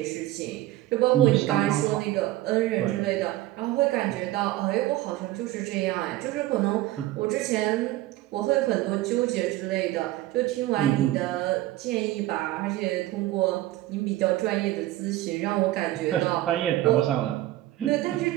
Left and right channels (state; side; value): quieter; left; 15.8 dB